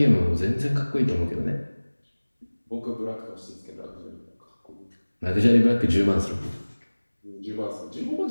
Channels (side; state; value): both; inverted; correlation -1.00